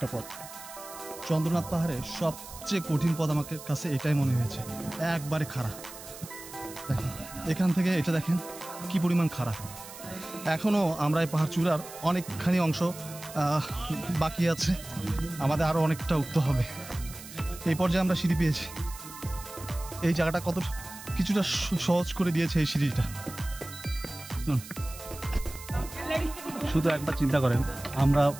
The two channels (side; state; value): right; noise; hiss, 15 dB below the sound